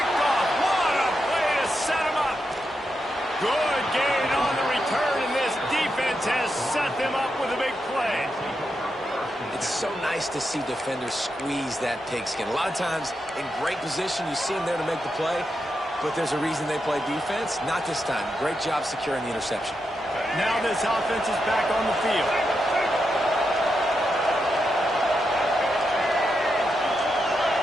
off. What a play to set them up. Good gain on the return, and this defense has set them up with a big play. It's so nice to see defenders squeeze that pigskin. A lot of times in great position, you see them there to make the play, but there's a reason they play defense. Not this time. Great job securing the interception. Now this offense is back on the field.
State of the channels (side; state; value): both; normal; correlation 0.85